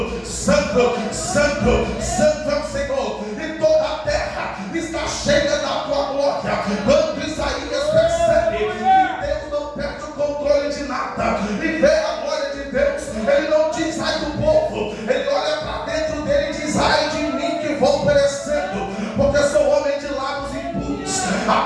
Santo, Santo, Santo é o Senhor, e toda a terra está cheia da tua glória. Quando Isaías percebe que Deus não perde o controle de nada e vê a glória de Deus, ele não diz: ai do povo, ele olha para dentro dele e diz: ai de mim que vou perecendo, porque sou homem de lábios impuros,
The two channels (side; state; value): both; identical; correlation 1.00